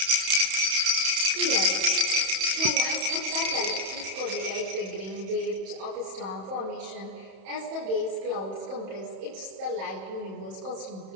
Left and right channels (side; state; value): left; late; 31 ms